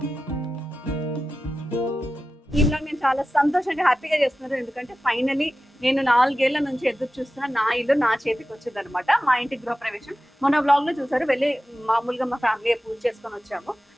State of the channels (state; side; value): normal; both; correlation 0.94